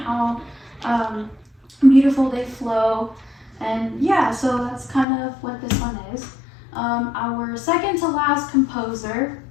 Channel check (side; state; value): right; drops out; at 5.1 s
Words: beautiful they flow. And yeah, so that's kind of what this one is. Our second to last composer,